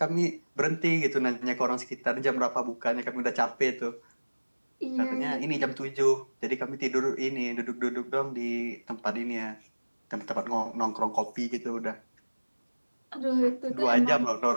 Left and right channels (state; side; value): inverted; both; correlation -1.00